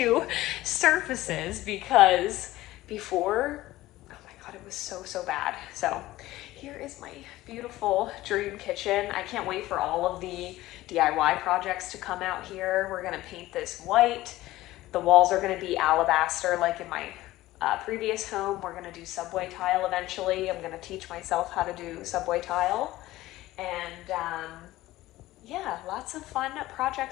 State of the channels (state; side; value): quieter; right; 16.7 dB